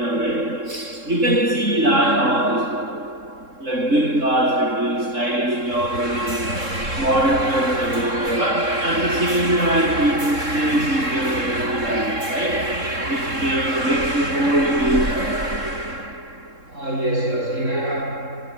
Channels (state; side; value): late; left; 3.7 ms